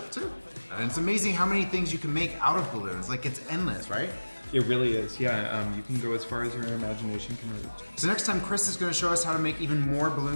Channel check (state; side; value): inverted; both; correlation -1.00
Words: too. And it's amazing how many things you can make out of balloons. Like, it's endless, right? It really is, yeah. You can go as far as your imagination can reach. So next time, Chris is going to show us how to make even more